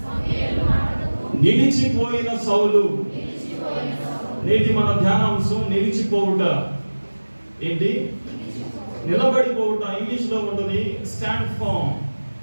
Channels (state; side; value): inverted; both; correlation -1.00